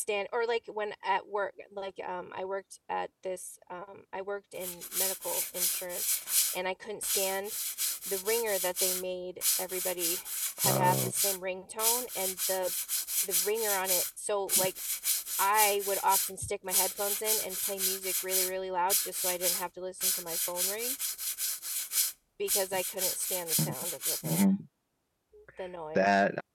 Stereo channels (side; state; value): both; identical; correlation 1.00